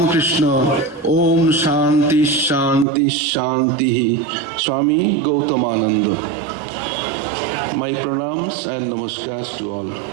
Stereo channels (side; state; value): left; drops out; at 2.9 s